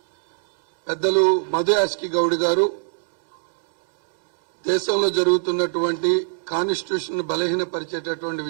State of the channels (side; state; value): left; silent; digital silence